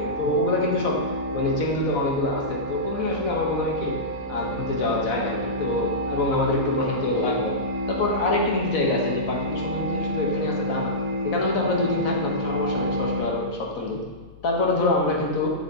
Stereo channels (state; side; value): noise; left; hum, 22 dB below the sound